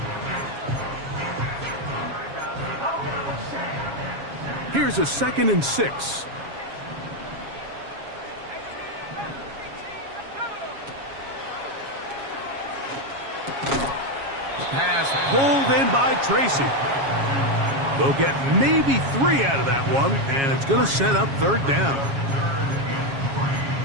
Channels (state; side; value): late; left; 7.3 ms